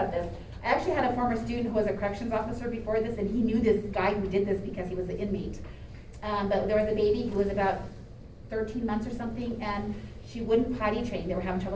this. I actually had a former student who was a corrections officer before this, and he knew this guy who did this because he was an inmate. But there was a baby who was about 13 months or something, and she wouldn't potty train. They were having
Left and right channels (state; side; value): identical; both; correlation 1.00